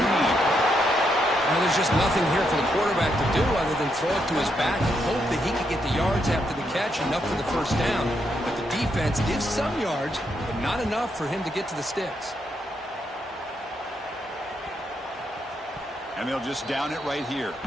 Now, there's just nothing here for the quarterback to do other than throw it to his back and hope that he could get the yards after the catch, enough for the first down. But the defense gives some yards, but not enough for him to get to the sticks. And they'll just down it right here.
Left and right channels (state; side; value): normal; both; correlation 0.79